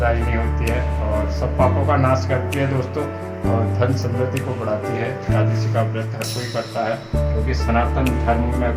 होती है और सब पापों का नाश करती है दोस्तों, और धन समृद्धि को बढ़ाती है। एकादशी का व्रत हर कोई करता है, क्योंकि सनातन धर्म में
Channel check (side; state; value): both; identical; correlation 1.00